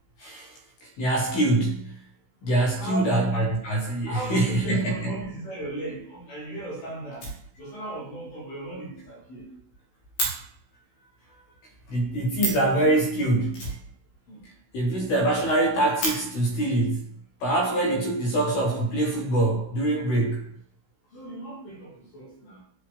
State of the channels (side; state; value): right; late; 16 ms